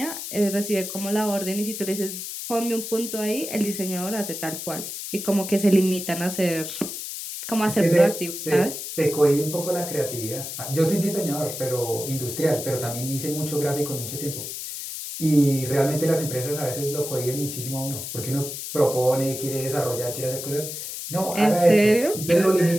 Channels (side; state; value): left; noise; hiss, 7 dB below the sound